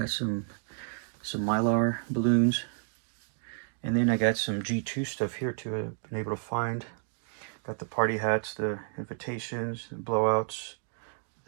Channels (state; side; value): silent; left; 57 dB below the other